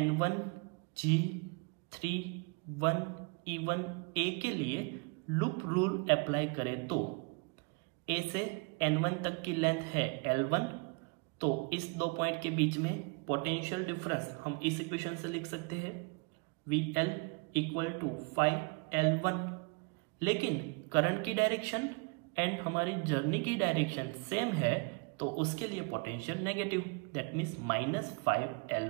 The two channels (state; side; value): quieter; left; 31.8 dB